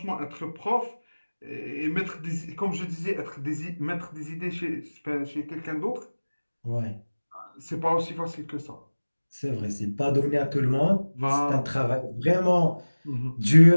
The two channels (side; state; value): both; inverted; correlation -1.00